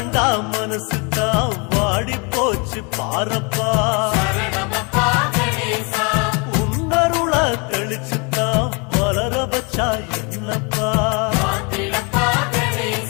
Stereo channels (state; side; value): quieter; right; 31.8 dB